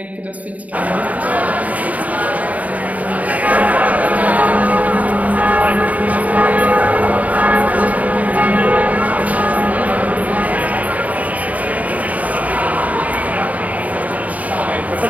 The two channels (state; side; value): late; left; 0.071 ms